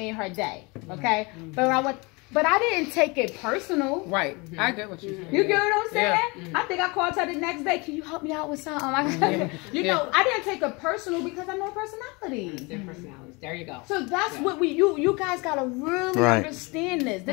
her day. Okay? But I didn't take it personal. Right. I get what you're saying. You get what I'm saying? I think I called her the next day. Can you help me out with something? You know, I didn't take it personal because I know personalities. Their personalities. There you go. So that's what you guys gotta really understand this.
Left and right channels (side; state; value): right; quieter; 27.2 dB